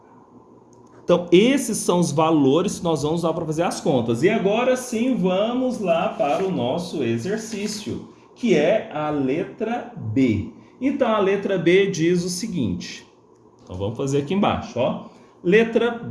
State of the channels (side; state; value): both; identical; correlation 1.00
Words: Então, esses são os valores que nós vamos usar para fazer as contas. E agora sim, vamos lá para o nosso exercício, que é a letra B. Então, a letra B diz o seguinte. Então, vamos fazer aqui embaixo, ó. Letra